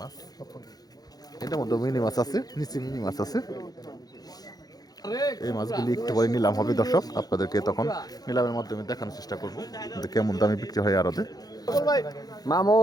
মাছ। এটার মধ্যে মিনি মাছ আছে, নিচে মিনি মাছ আছে। এই মাছগুলি একটু পরে নিলাম হবে দর্শক, আপনাদেরকে তখন নিলামের মাধ্যমে দেখানোর চেষ্টা করবো কেমন দামে বিক্রি হয় আরতে।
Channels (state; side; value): late; right; 0.19 ms